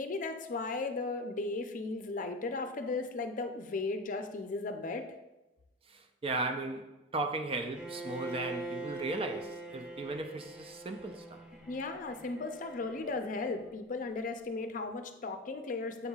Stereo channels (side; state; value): both; normal; correlation 0.25